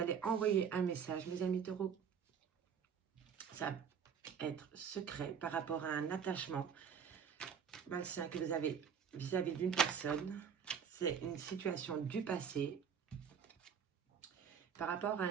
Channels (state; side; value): quieter; left; 7.3 dB